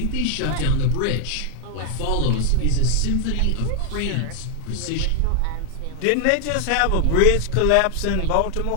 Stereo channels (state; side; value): different; both; correlation 0.00